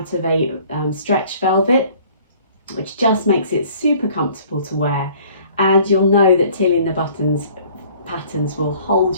of a stretch velvet, which just makes it super comfortable to wear. And you'll know that Tilly and the Buttons patterns will hold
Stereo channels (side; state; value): both; inverted; correlation -0.54